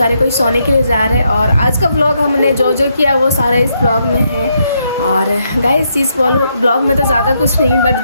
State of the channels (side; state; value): both; inverted; correlation -0.78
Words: कोई सोने के लिए जा रहे हैं। और आज का व्लॉग हमने जो किया वो सारा इस ब्लॉग में है। और गाइस इस ब्लॉग में तो ज़्यादा कुछ नहीं, बट